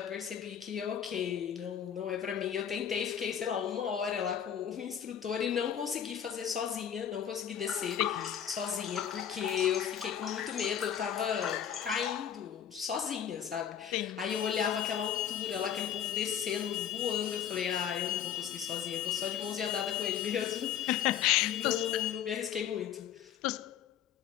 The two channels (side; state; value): right; quieter; 9.1 dB